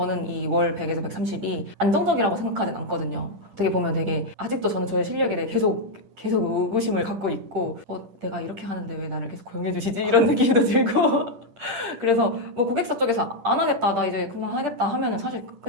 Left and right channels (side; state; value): left; late; 10 ms